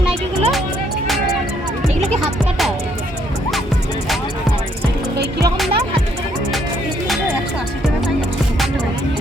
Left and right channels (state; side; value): normal; both; correlation 0.69